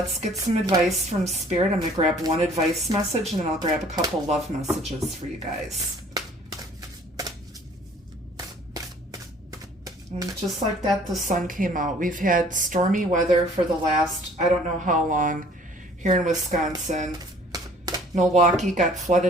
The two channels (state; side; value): normal; both; correlation 0.54